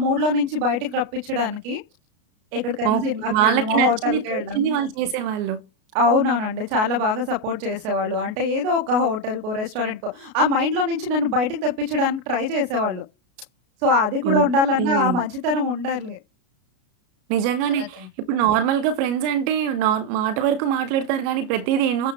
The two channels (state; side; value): late; left; 33 ms